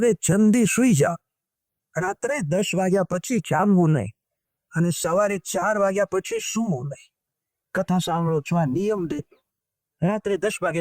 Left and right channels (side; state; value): both; identical; correlation 1.00